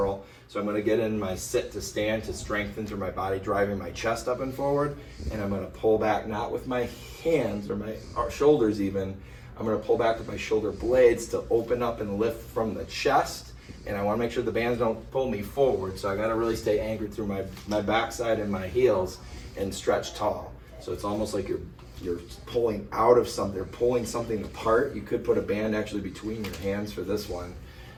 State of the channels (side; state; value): both; identical; correlation 1.00